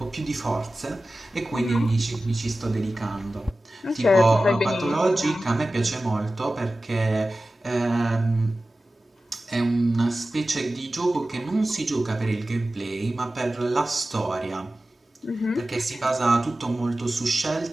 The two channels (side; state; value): both; normal; correlation 0.95